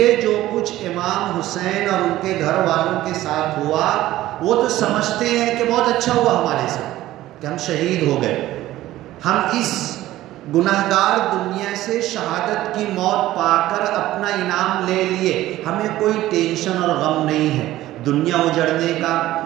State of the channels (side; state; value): left; quieter; 15.3 dB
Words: جو کچھ امام حسین اور ان کے گھر والوں کے ساتھ ہوا، وہ تو سمجھتے ہیں کہ بہت اچھا ہوا ہمارے ساتھ کہ ہم شہید ہو گئے، ہم اس گناہگار دنیا سے شہادت کی موت پا کر اپنا انعام لے لیے، ہمیں کوئی ٹینشن اور غم نہیں ہے دنیا اجڑنے کا،